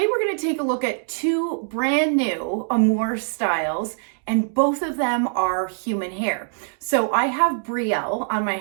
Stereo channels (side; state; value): left; silent; digital silence